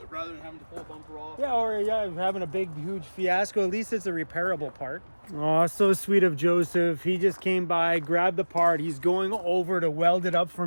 Rather than having to pull a bumper off. Yeah, or having a big, huge fiasco. At least it's a repairable part. Oh, so sweet of Joseph. He just came by, grabbed the part. He's going over to weld it up for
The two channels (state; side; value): inverted; both; correlation -1.00